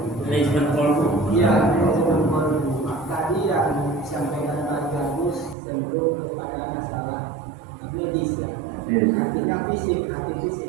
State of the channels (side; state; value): left; drops out; at 5.6 s